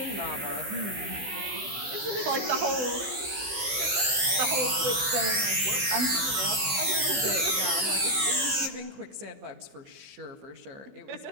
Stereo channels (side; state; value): left; late; 15 ms